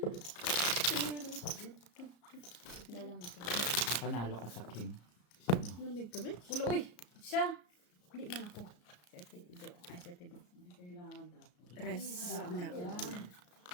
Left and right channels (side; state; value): right; late; 34 ms